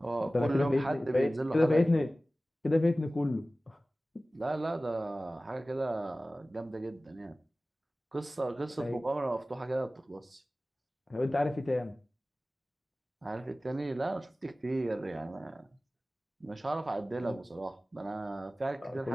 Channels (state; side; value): normal; both; correlation 0.97